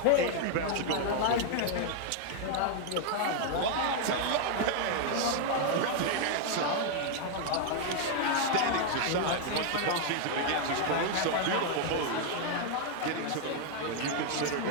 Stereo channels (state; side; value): different; both; correlation 0.00